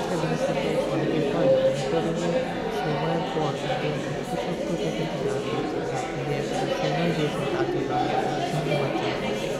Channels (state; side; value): identical; both; correlation 1.00